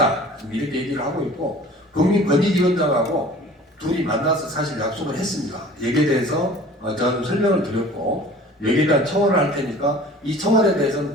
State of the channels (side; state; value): both; normal; correlation 0.45